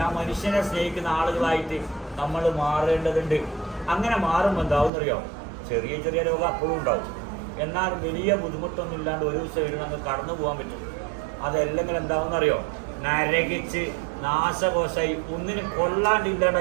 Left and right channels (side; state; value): left; drops out; at 4.9 s